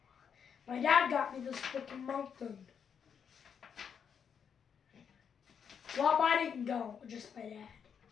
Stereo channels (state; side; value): quieter; right; 7.3 dB